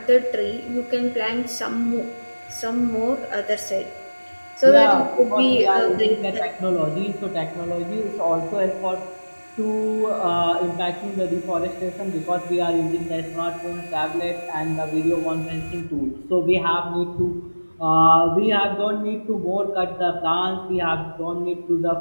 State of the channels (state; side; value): inverted; both; correlation -1.00